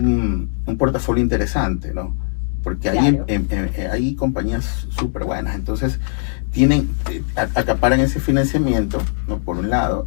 portafolio interesante, ¿no? Porque claro, hay compañías súper buenas, entonces acaparan ese financiamiento, ¿no? Por un lado,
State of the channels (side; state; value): right; silent; digital silence